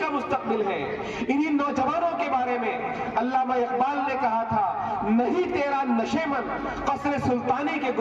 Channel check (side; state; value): both; identical; correlation 1.00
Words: کا مستقبل ہیں. انہی نوجوانوں کے بارے میں علامہ اقبال نے کہا تھا، نہیں تیرا نشے من قصر سلطانی کے